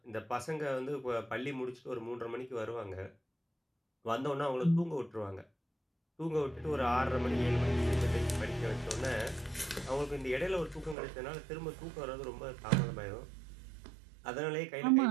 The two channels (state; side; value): drops out; left; at 11.0 s